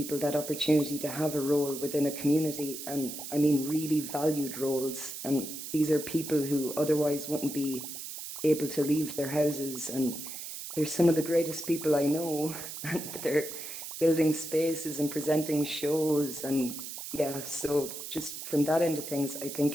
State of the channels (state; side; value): noise; right; hiss, 9 dB below the sound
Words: that opportunity to have a role within a community, and I mean really valued roles. And these are people who otherwise wouldn't be able to leave their houses, and they're some of the greatest people I know, and they're building spaces and presenting shows. And yeah, so just from that end of things, I